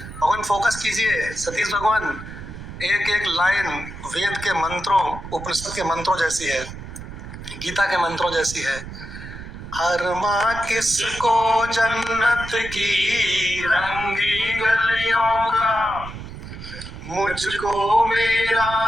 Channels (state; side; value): noise; right; rumble, 11 dB below the sound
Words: फोकस कीजिए सतीश भगवान, एक एक लाइन वेद के मंत्रों, उपनिषद के मंत्रों जैसी है, गीता के मंत्रों जैसी है। अरमा किसको जन्नत की रंगी गलियों का, मुझको